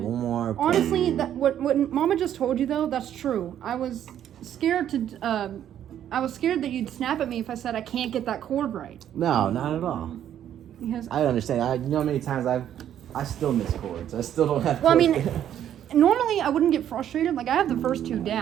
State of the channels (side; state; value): left; quieter; 10.5 dB